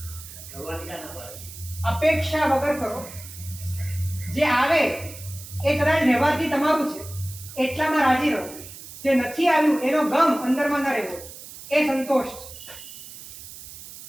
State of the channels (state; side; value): noise; right; hiss, 14 dB below the sound